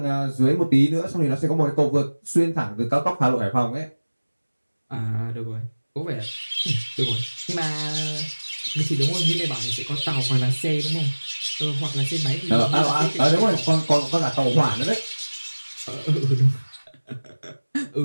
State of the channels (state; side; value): inverted; both; correlation -1.00